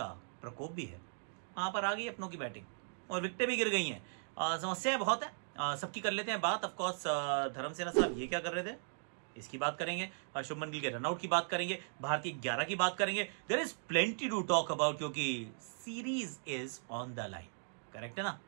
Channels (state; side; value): silent; left; digital silence